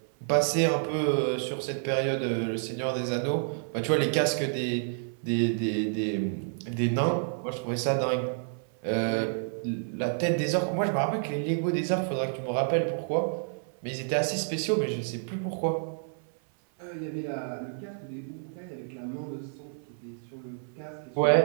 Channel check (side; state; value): left; silent; 57 dB below the other